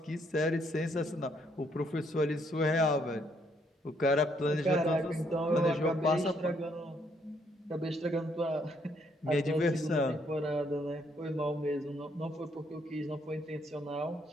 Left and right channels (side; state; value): both; normal; correlation 0.70